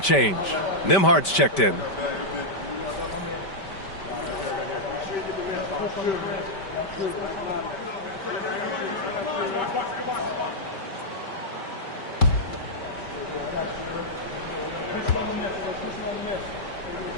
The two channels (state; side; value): late; right; 5.1 ms